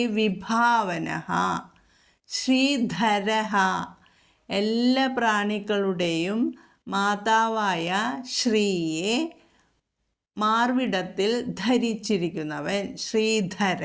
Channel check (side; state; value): both; identical; correlation 1.00